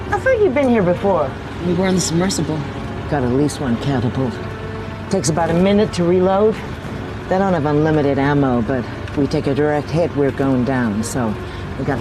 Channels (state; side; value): identical; both; correlation 1.00